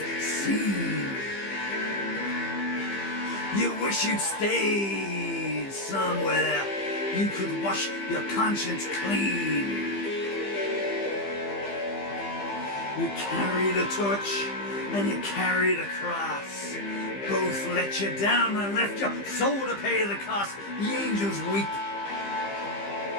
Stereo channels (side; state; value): right; late; 15 ms